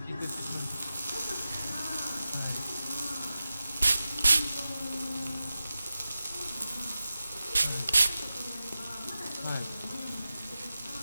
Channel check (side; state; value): both; inverted; correlation -0.94